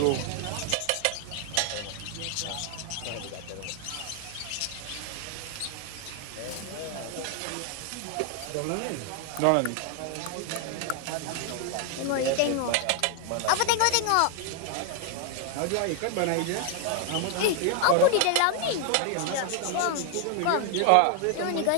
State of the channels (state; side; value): different; both; correlation 0.00